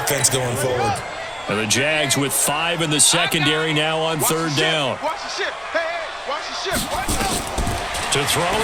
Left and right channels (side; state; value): both; identical; correlation 1.00